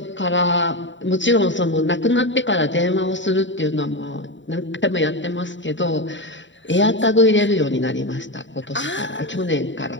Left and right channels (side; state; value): right; late; 0.54 ms